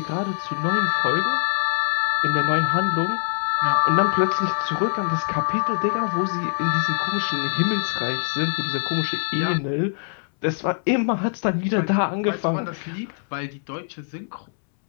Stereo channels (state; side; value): silent; right; 63 dB below the other